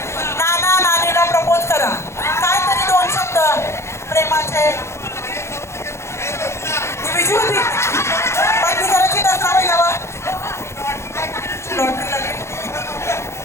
नानीला प्रपोज करा. काय तरी 2 शब्द प्रेमाचे. ती विजू होती पत्नी करायची दसरावी लावा. लॉटरी लागली.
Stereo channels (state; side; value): late; right; 0.13 ms